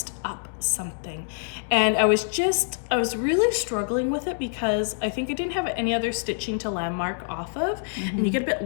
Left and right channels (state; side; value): silent; right; digital silence